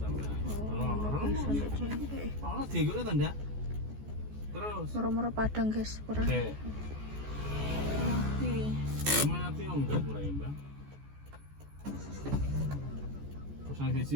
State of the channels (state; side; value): late; left; 14 ms